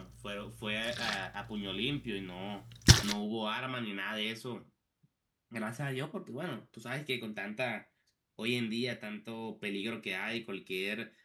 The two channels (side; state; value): both; identical; correlation 1.00